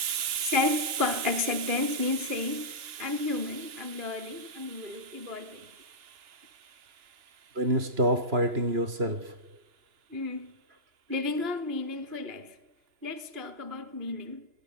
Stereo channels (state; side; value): late; left; 2.9 ms